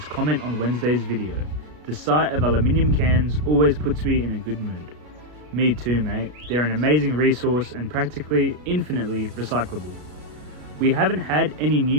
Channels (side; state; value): left; late; 33 ms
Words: comment on Wednesday's video. The sight of aluminium cans always puts me in a good mood. Me too, mate. They're an amazing resource and practically infinitely recyclable. We haven't had any